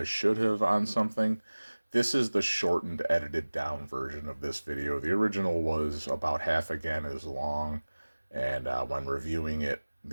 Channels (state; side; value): inverted; both; correlation -1.00